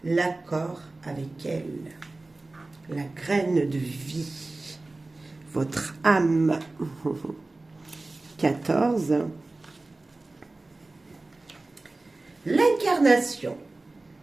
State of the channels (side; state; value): left; quieter; 3.1 dB